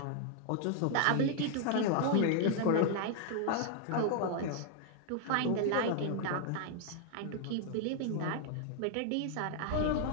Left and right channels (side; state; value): both; different; correlation 0.00